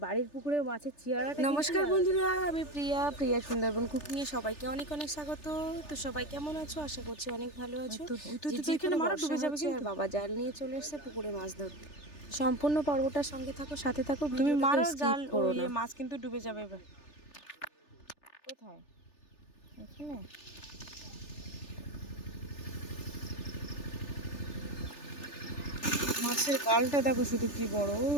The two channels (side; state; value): right; late; 3.4 ms